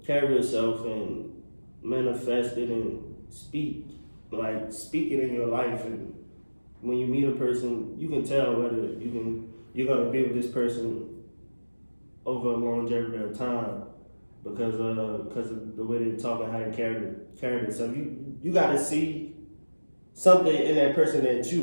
carry yourself and manifest it and speak it in your life. And when you meet a person, you can tell whether you're gonna be with this person over a longevity of time because of the way they talk and how they carry themselves. You gotta see something in that person that you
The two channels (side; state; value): both; inverted; correlation -1.00